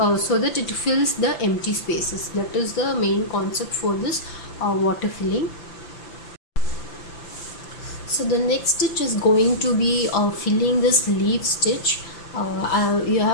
so that it fills the empty spaces. That is the main concept for this water filling. So the next stitch is going to be filling this leaf stitch.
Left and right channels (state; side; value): late; right; 5.9 ms